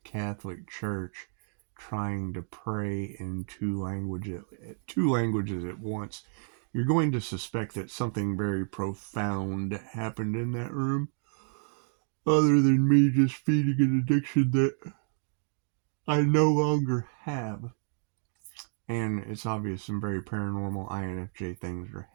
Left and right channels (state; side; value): silent; left; 58 dB below the other